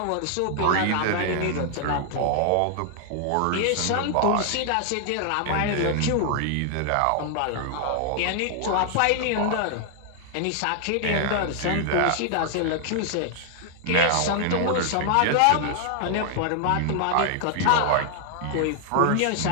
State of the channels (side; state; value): both; different; correlation 0.00